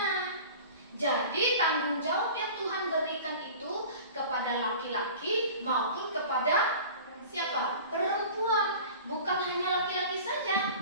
Jadi tanggung jawab yang Tuhan berikan itu kepada laki-laki maupun kepada siapa? Perempuan. Bukan hanya laki-laki saja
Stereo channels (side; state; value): both; inverted; correlation -0.40